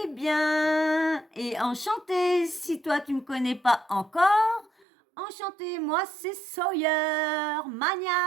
bien. Et enchanté, si toi tu me connais pas encore, enchanté, moi c'est Sawyer,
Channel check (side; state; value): left; drops out; at 4.9 s